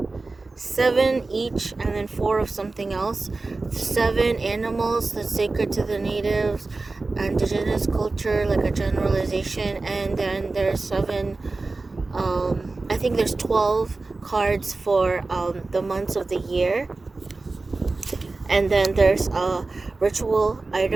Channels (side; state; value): left; quieter; 3.5 dB